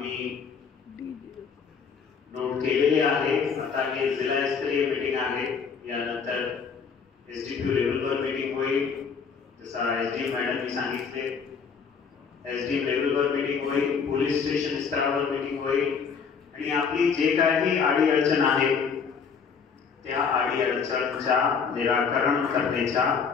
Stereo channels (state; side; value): quieter; right; 6.0 dB